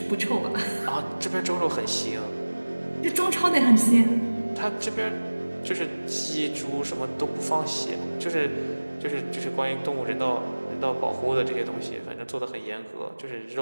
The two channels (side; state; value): both; inverted; correlation -1.00